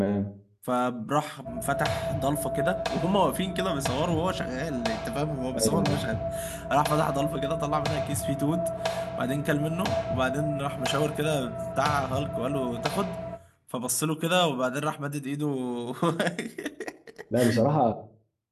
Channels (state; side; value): identical; both; correlation 1.00